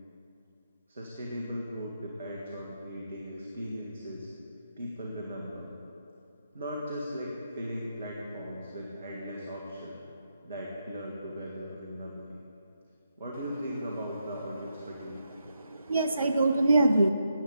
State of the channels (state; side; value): inverted; both; correlation -0.82